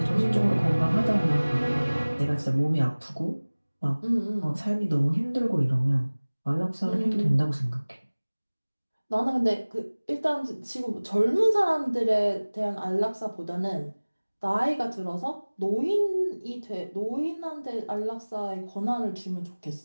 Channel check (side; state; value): both; inverted; correlation -1.00